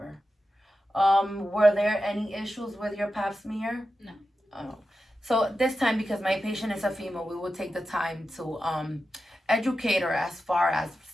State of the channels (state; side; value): normal; both; correlation 0.91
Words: Were there any issues with your pap smear? No. Oh. So this time, because my patient is a female, we will take the time to educate her as far as